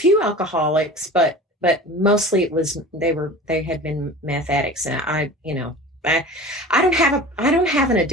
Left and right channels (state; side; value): normal; both; correlation 0.37